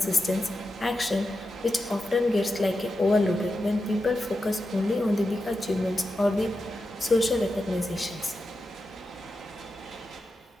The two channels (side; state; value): both; normal; correlation 0.89